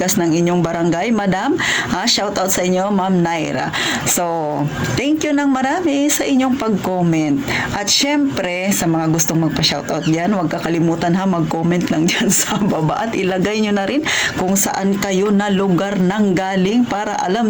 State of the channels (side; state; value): both; identical; correlation 1.00